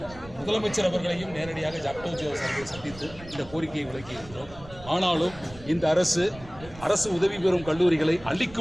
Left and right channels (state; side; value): noise; right; rumble, 18 dB below the sound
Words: முதலமைச்சர் அவர்களையும் நேரடியாக ஜாக்டோஜி அவர்களை சந்தித்து இந்த கோரிக்கையை விளக்கியிருக்கிறோம். ஆனாலும் இந்த அரசு உதவி பெறும் கல்லூரிகளை